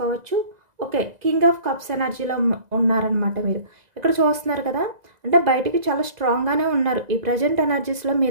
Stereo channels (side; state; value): left; late; 2.0 ms